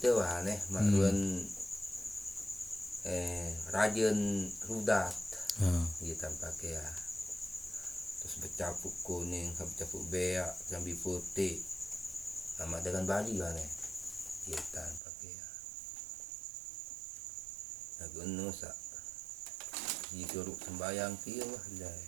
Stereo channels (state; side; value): drops out; left; at 15.0 s